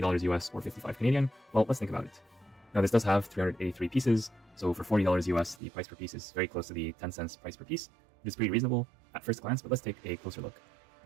US or 55 Canadian? Well, let's think about it. Now this does have 383 pieces, so for $40 US, the price per piece is very close to the 10 cents price per piece, which is pretty reasonable at first glance, but let's take a closer look.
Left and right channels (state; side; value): drops out; left; at 5.6 s